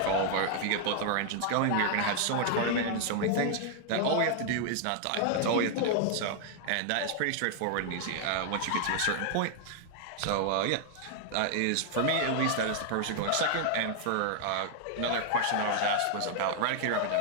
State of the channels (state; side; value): different; both; correlation 0.00